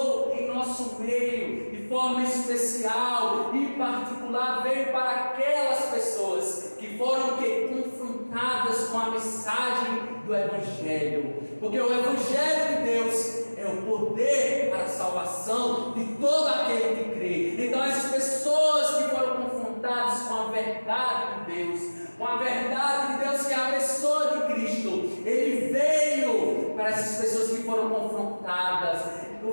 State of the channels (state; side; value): inverted; both; correlation -1.00